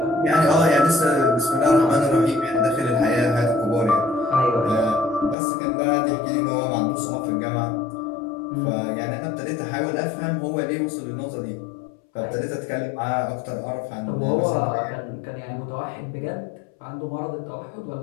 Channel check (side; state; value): right; drops out; at 5.4 s